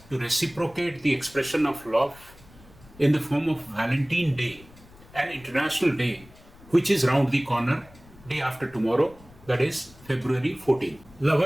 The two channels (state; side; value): noise; left; rumble, 24 dB below the sound